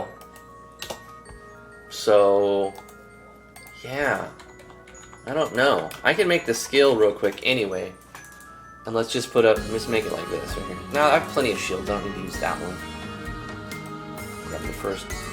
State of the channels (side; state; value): both; identical; correlation 1.00